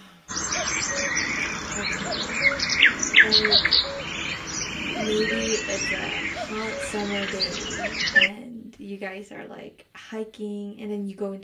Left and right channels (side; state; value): both; identical; correlation 1.00